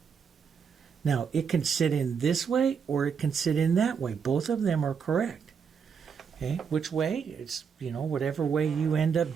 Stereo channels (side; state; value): left; quieter; 6.5 dB